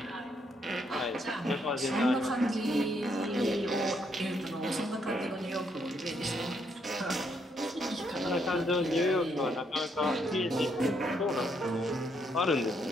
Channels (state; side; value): normal; both; correlation 0.74